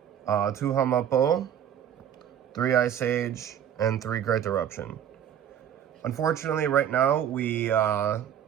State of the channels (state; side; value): quieter; left; 9.6 dB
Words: 2 Hamapo, 3 Ice Age, and 3 Great Eruption. Unfortunately, right now, we